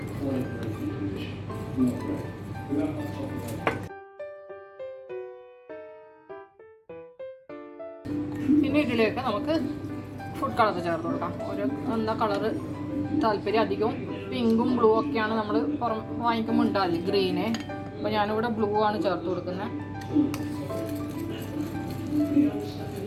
പിന്നെ ഇതിലേക്ക് നമുക്ക് ഫുഡ് കളർ ചേർത്ത് കൊടുക്കാം. ഒരു എന്താ കളറ് താല്പര്യം, അധികവും പിങ്കും ബ്ലൂ ഒക്കെയാണ് നമ്മൾ വാങ്ങിക്കുമ്പോൾ ഉണ്ടാവില്ല, ഗ്രീന്. അപ്പോൾ ഞാനിവിടെ ബ്ലൂ ആണ് ചേർത്ത് കൊടുക്കുന്നത്.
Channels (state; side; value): identical; both; correlation 1.00